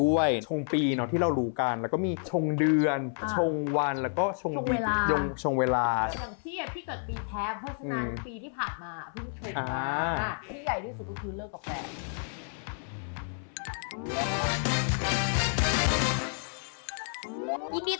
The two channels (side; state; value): right; silent; 58 dB below the other